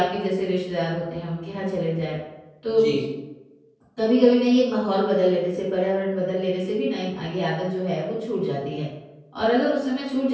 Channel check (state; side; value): identical; both; correlation 1.00